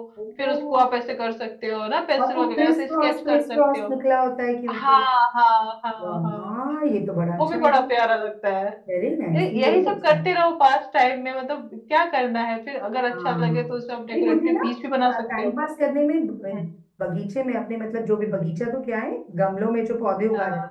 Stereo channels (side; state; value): both; identical; correlation 1.00